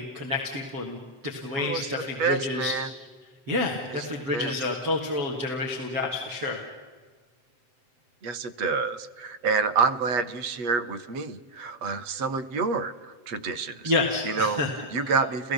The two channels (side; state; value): left; late; 7.7 ms